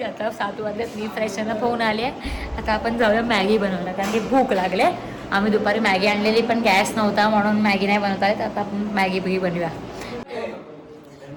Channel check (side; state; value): both; identical; correlation 1.00